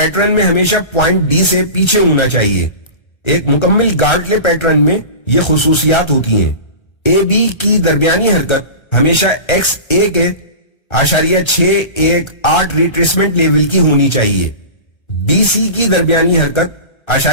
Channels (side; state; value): right; late; 1.3 ms